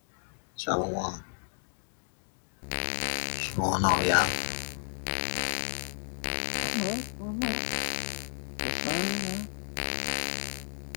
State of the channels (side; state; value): right; silent; digital silence